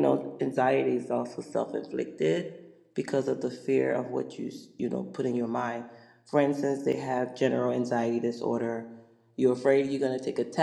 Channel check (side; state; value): both; identical; correlation 1.00